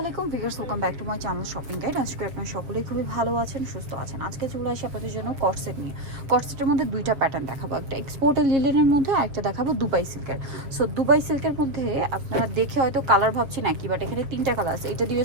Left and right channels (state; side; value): late; left; 6.9 ms